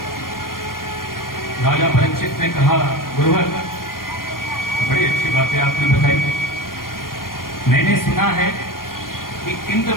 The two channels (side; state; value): right; late; 0.91 ms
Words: राजा परीक्षित ने कहा, गुरुवर बड़ी अच्छी बातें आपने बताई। मैंने सुना है कि इंद्र